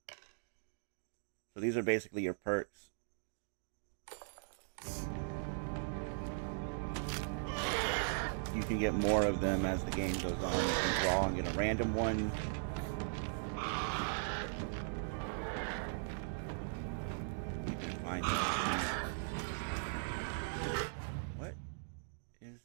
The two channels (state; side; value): silent; left; digital silence